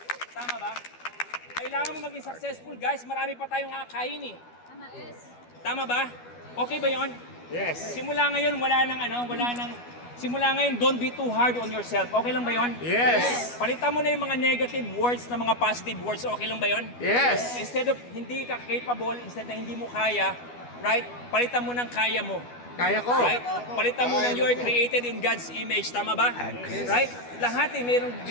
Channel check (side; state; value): right; late; 12 ms